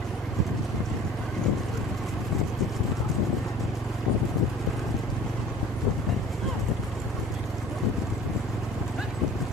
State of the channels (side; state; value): both; normal; correlation 0.46